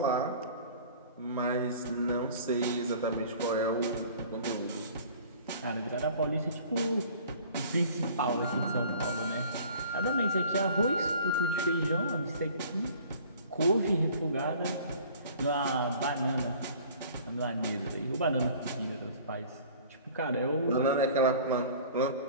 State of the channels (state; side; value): inverted; both; correlation -0.48